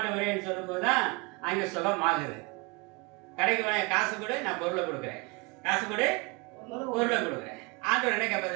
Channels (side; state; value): left; quieter; 28.0 dB